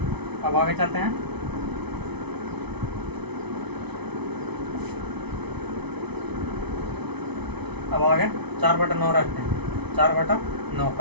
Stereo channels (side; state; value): left; late; 0.99 ms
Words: अब आगे चलते हैं, अब आगे 4/9 रखते हैं, 4/9